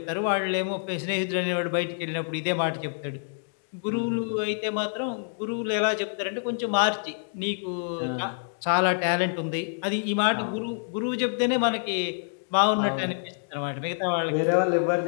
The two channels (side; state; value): right; silent; digital silence